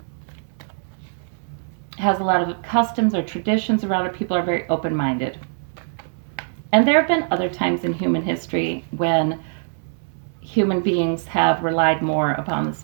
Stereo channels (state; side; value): silent; left; digital silence